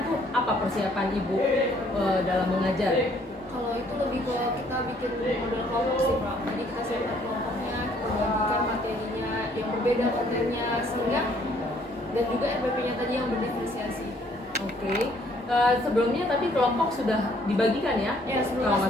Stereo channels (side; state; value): both; normal; correlation 0.63